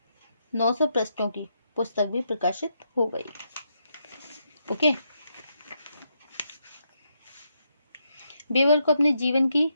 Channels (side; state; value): both; inverted; correlation -0.80